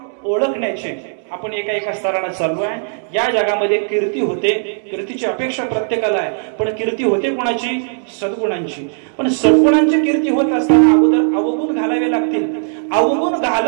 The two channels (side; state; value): left; silent; digital silence